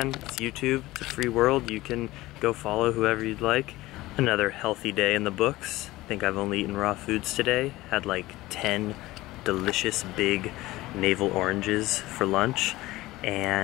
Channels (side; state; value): right; quieter; 18.2 dB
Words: It's YouTube, it's a free world, you can go follow whoever you'd like. Another healthy day in the books. I think I've only eaten raw foods today. Had like 10 delicious big navel oranges for lunch.